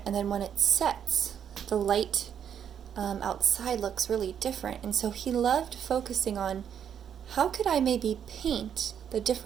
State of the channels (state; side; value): quieter; left; 8.6 dB